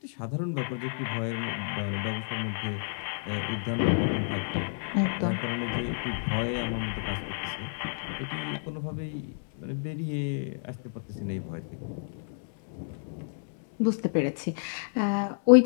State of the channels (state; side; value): silent; right; 58 dB below the other